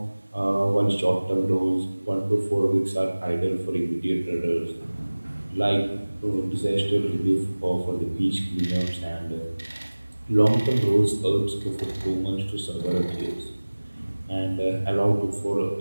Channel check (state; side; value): inverted; both; correlation -1.00